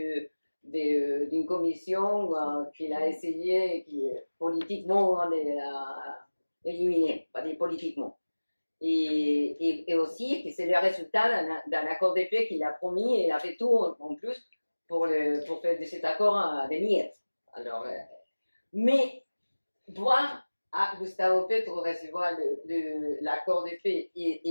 d'une commission qu'il a essayé politiquement d'éliminer, pas politiquement. Et aussi que c'est le résultat d'un accord de paix qu'il a promis et il a fait tout en plus pour faire de cet accord des miettes. Alors, mais voir à Gustavo Petro recevoir l'accord de paix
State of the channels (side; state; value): both; inverted; correlation -1.00